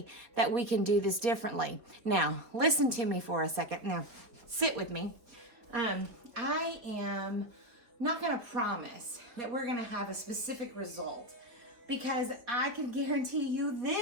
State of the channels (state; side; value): late; left; 4.3 ms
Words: that we can do this differently. Now, listen to me for a second. Now, sit with me. I am not going to promise that we're going to have a specific result because I can guarantee you